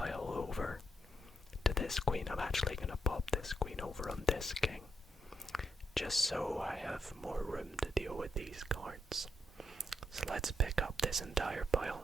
over to this queen. I'm actually going to pop this queen over on this king, just so I have more room to deal with these cards. So let's pick up this entire pile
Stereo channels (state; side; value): normal; both; correlation 0.80